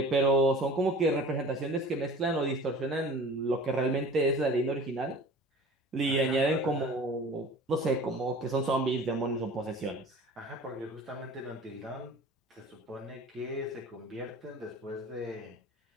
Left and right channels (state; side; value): normal; both; correlation 0.42